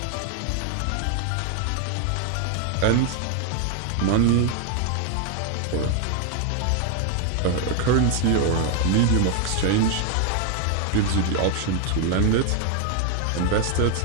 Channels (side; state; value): both; different; correlation 0.01